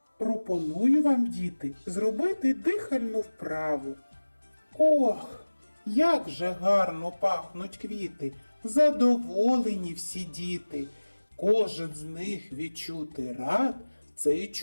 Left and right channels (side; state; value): both; inverted; correlation -1.00